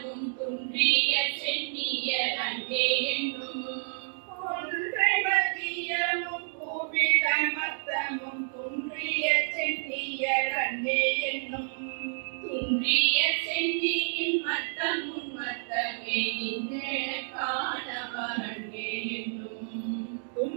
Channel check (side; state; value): left; silent; digital silence